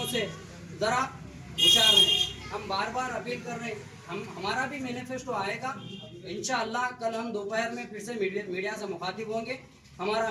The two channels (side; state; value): both; identical; correlation 1.00